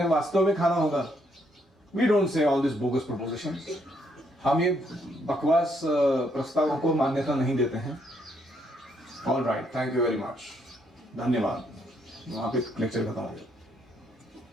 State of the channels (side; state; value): both; normal; correlation 0.73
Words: वास्तव में खाना होगा। We don't say all this bogus proposition. हम ये बकवास प्रस्तावों को मान्यता नहीं देते हैं। All right, thank you very much, धन्यवाद। वहां पे लेक्चर खत्म हो गया।